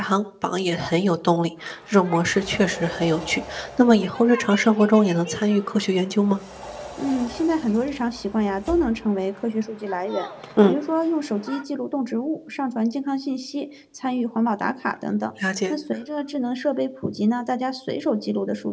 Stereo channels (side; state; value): both; identical; correlation 1.00